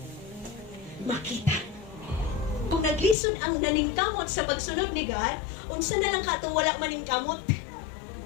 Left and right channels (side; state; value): right; drops out; at 3.2 s